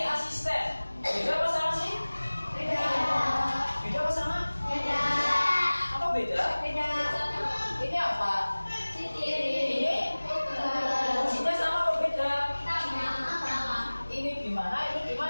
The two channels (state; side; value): inverted; both; correlation -1.00